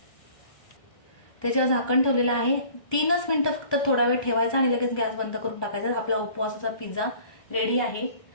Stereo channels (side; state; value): right; late; 1.2 ms